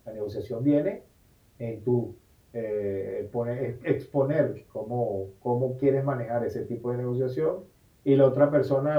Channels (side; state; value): both; identical; correlation 1.00